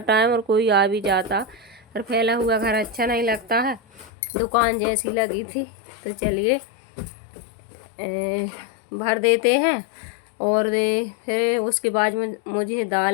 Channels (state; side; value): drops out; right; at 4.1 s